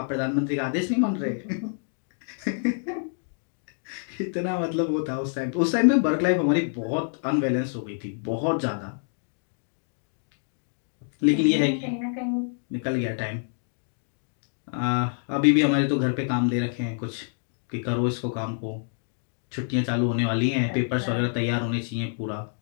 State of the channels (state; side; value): silent; right; digital silence